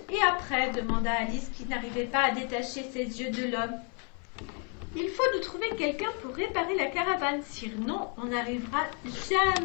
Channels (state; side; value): quieter; right; 39.1 dB